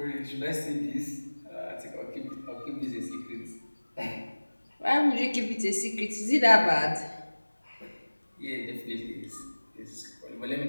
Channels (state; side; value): inverted; both; correlation -1.00